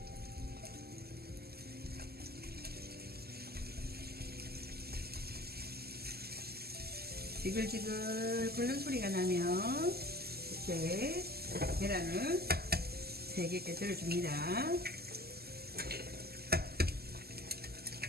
지글지글 끓는 소리가 나면 이렇게 계란을 3개 깨뜨려줍니다.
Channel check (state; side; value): late; left; 0.46 ms